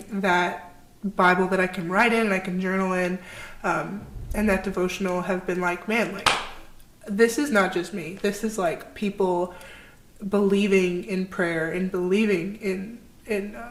that Bible that I can write in and I can journal in, and that devotional have been like, man, like, this is not just me. This is like people believing in prayer and believing in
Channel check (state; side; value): identical; both; correlation 1.00